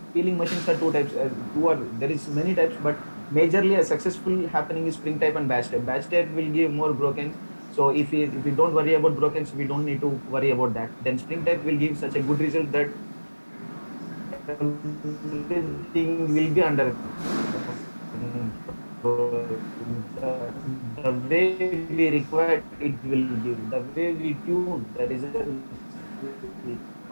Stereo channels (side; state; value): both; inverted; correlation -1.00